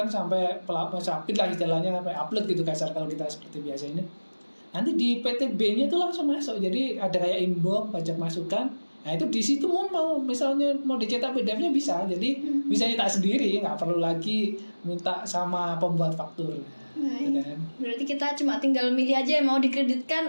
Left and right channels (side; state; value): both; inverted; correlation -1.00